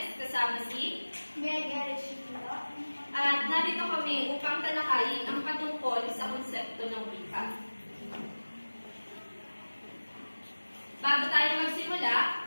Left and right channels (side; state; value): both; inverted; correlation -1.00